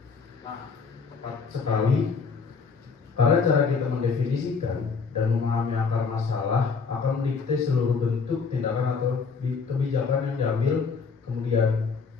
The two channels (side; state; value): right; quieter; 5.2 dB